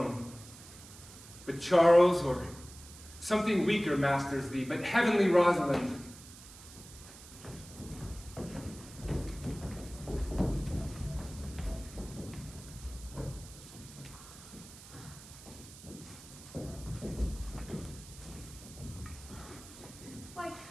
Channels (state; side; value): noise; right; hiss, 17 dB below the sound